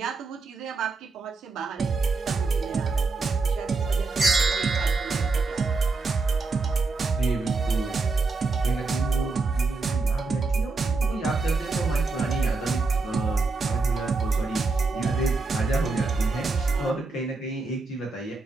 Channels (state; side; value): quieter; left; 3.8 dB